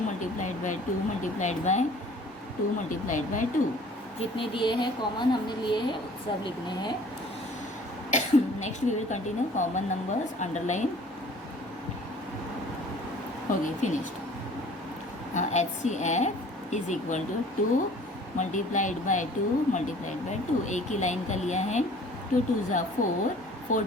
multiplied by 2 multiplied by 2 multiplied by 2. जितने दिए हैं कॉमन हमने लिए हैं सब लिखने हैं। Next we will continue common numbers, underline हो गई, finished. HCF is equal to 2 multiplied by 2 multiplied by 2, एक ही लाइन का लिया है। 2 2 ज़ा 4, 4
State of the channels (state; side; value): normal; both; correlation 0.50